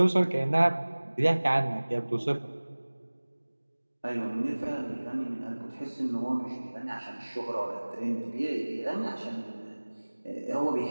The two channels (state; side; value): inverted; both; correlation -1.00